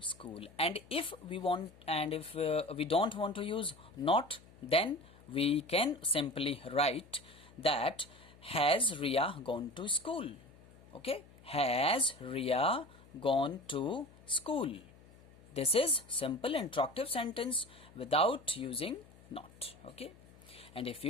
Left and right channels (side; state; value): left; noise; hum, 24 dB below the sound